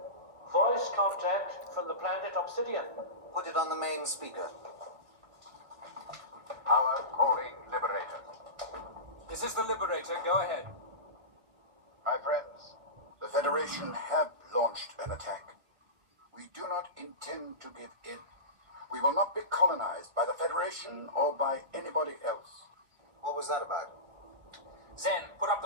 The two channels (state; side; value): late; left; 1.8 ms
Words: Voice contact from the planet Obsidian. Put it on the main speaker. Power calling Liberator. This is the Liberator. Go ahead. My friends, the Federation have launched an attack. We do not intend to give in. We will not be colonized by the Federation or by anybody else. What was that about? Zen, put up